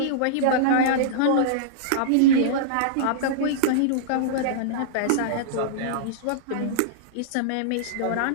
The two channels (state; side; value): different; both; correlation -0.02